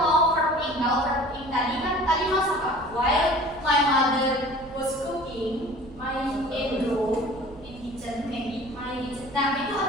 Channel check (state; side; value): noise; right; rumble, 20 dB below the sound